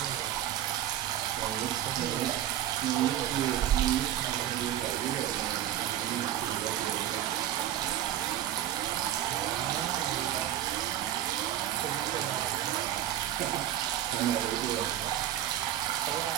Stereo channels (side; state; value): left; quieter; 11.9 dB